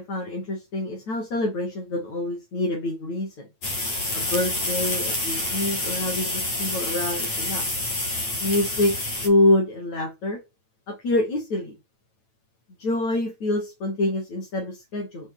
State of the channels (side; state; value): right; late; 9.1 ms